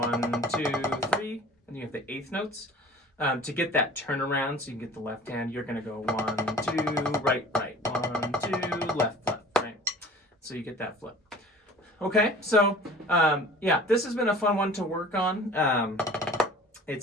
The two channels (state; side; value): normal; both; correlation 0.45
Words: 2, 3, and you have the 8th notes. To get that turnaround, so you can get the left hand, you're going to go 1, 2, right, right, 1, 2, left, left, right. So you get that flip. Okay, so yeah, this has been a fun one to work on.